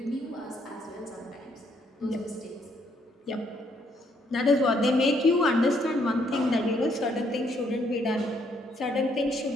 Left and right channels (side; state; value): both; normal; correlation 0.70